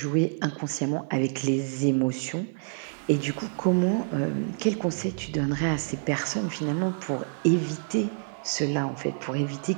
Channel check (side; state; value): left; silent; digital silence